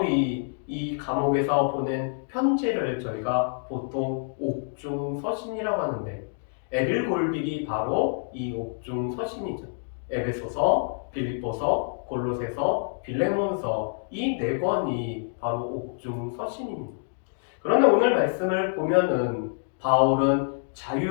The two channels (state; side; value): silent; right; digital silence